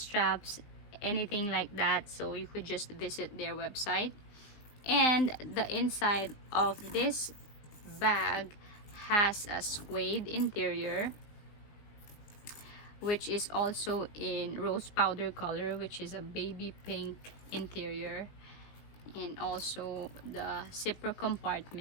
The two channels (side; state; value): right; late; 19 ms